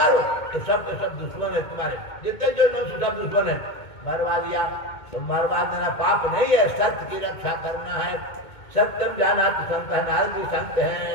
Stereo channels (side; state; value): right; late; 2.2 ms